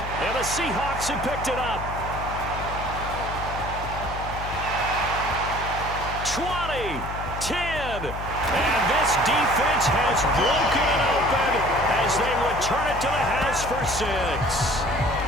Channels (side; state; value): left; noise; hum, 8 dB below the sound